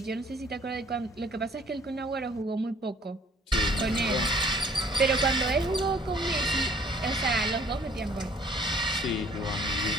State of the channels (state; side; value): normal; both; correlation 0.57